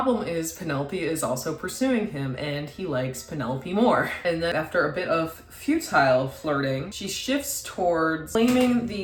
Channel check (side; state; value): both; identical; correlation 1.00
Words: is, Penelope is also pursuing him, and he likes Penelope more. And then after a bit of futile flirting, she shifts towards claiming